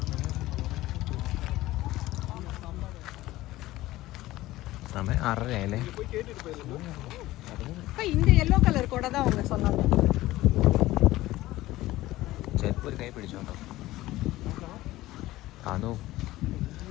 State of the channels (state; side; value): quieter; right; 16.9 dB